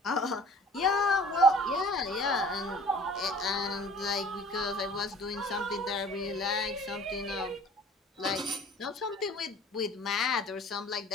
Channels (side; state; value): both; normal; correlation 0.48